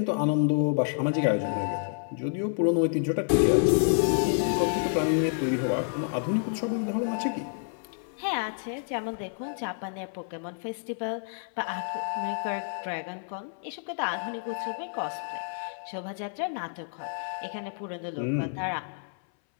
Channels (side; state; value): right; silent; 59 dB below the other